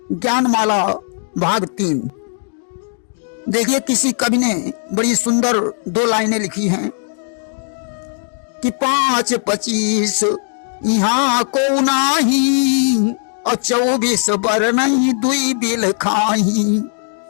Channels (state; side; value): silent; right; 68 dB below the other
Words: ज्ञानमाला भाग 3। देखिए, किसी कवि ने बड़ी सुंदर 2 लाइनें लिखी हैं कि 5-25 यहाँ को नाही और 24 बर नहीं दुई बिल खाही,